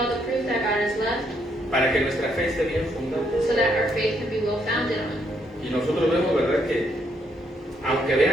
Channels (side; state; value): both; normal; correlation 0.74